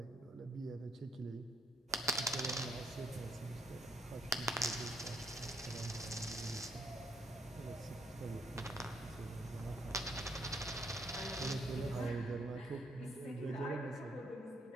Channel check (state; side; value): normal; both; correlation 0.69